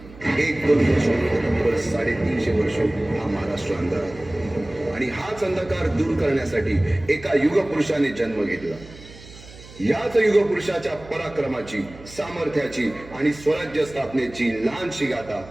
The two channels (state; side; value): noise; right; hum, 19 dB below the sound